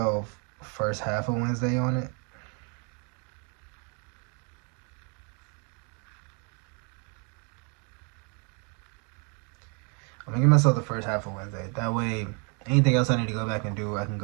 first half of Wednesday on it. I'm gonna give myself the first half of Wednesday. That way, anything else I need to go back and do, I can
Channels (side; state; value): left; quieter; 36.2 dB